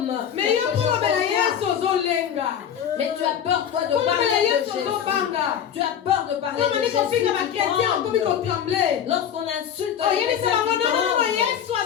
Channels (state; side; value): quieter; right; 8.9 dB